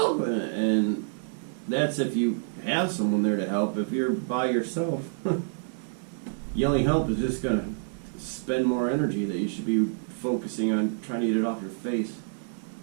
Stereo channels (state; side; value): silent; left; digital silence